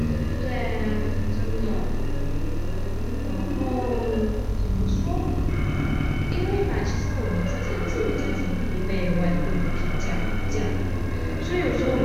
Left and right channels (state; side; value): noise; right; hiss, 30 dB below the sound